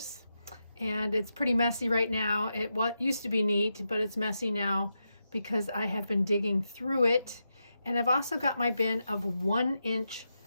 and it's pretty messy right now. It used to be neat, but it's messy now because I have been digging through it. And I've also got my bin of 1-inch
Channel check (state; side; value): inverted; both; correlation -0.87